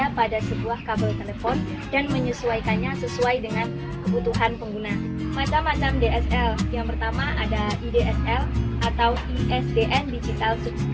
pada sebuah kabel telepon dan menyesuaikannya sesuai dengan kebutuhan pengguna. Macam-macam DSL. Yang pertama ada IDSL atau ISDN Digital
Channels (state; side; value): identical; both; correlation 1.00